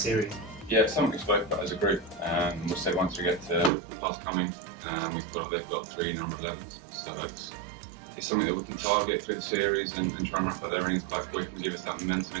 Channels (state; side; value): drops out; left; at 3.7 s